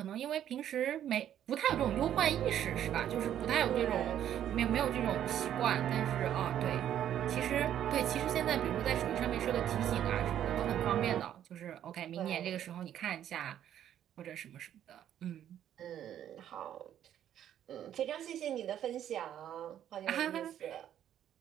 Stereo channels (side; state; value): left; quieter; 10.6 dB